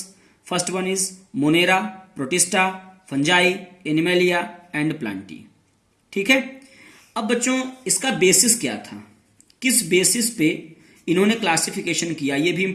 First one is monera, protista, fungi, animalia and plantae. ठीक है। अब बच्चों, इसका बेसिस क्या था? किस बेसिस पे इन्होंने क्लासिफिकेशन किया, ये भी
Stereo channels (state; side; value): identical; both; correlation 1.00